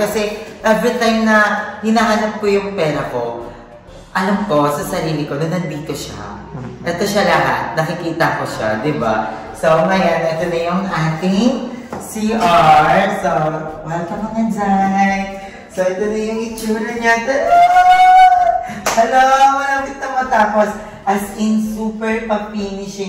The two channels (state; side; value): identical; both; correlation 1.00